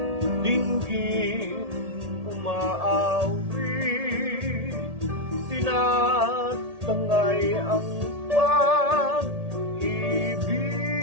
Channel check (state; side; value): late; left; 1.8 ms